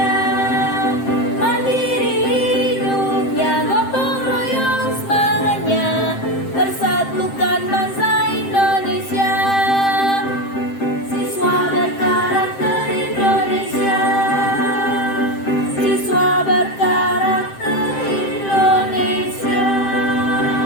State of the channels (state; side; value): late; right; 7.6 ms